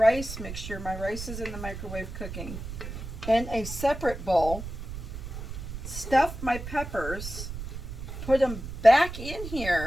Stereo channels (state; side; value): noise; right; rumble, 8 dB below the sound